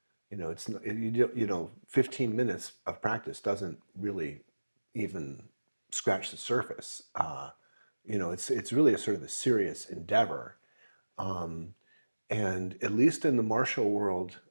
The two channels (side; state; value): both; inverted; correlation -1.00